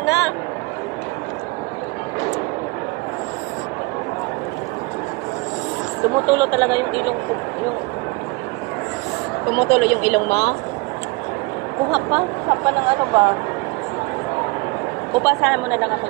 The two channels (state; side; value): quieter; left; 25.8 dB